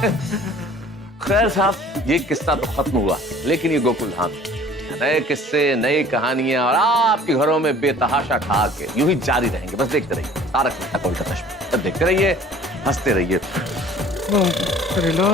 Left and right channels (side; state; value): both; normal; correlation 0.50